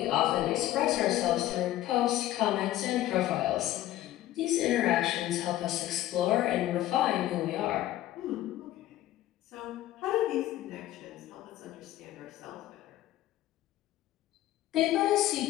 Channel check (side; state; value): right; quieter; 14.4 dB